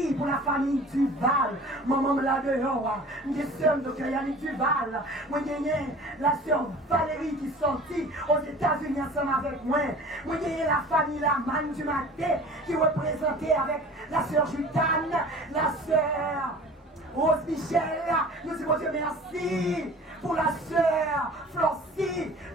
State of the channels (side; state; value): both; normal; correlation 0.43